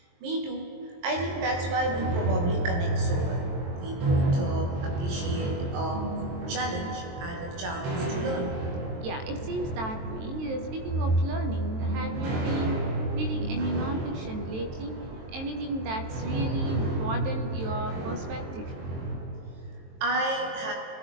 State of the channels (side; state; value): left; late; 23 ms